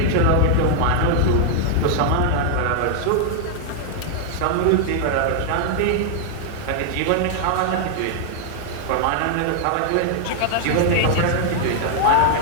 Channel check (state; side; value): different; both; correlation 0.00